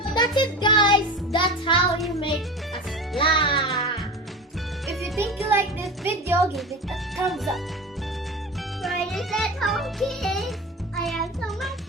That's it, guys. That's how you make a slime. If you think you like this video, give it a thumbs up. Fridays at home, kids. I have so much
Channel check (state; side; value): normal; both; correlation 0.30